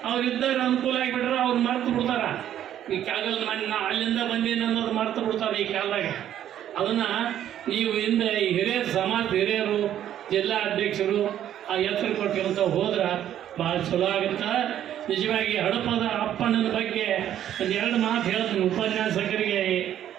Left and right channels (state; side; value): quieter; left; 11.0 dB